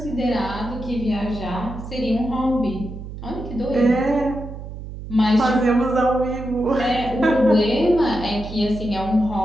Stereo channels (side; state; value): right; noise; hum, 10 dB below the sound